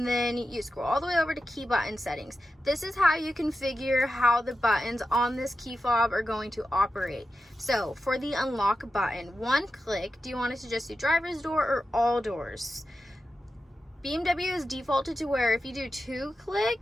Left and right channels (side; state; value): both; normal; correlation 0.91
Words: then you scroll all the way over to Key Button Settings. This is how you configure how the buttons on this key fob are going to operate. So for the unlock button, one click, do you want it to just do driver's door or all doors? BMW is defaulted to where if you do 2